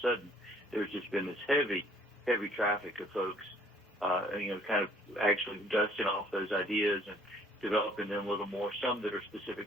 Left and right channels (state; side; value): normal; both; correlation 0.59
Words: sudden, there's just been this heavy traffic of folks, kind of actually dusting off those ideas and developing them a little more, some that are specific